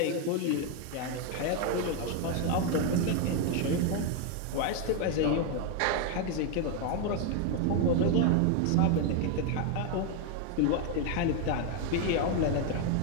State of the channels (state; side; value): different; both; correlation 0.01